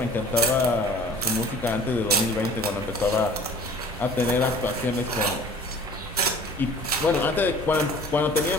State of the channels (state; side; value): normal; both; correlation 0.47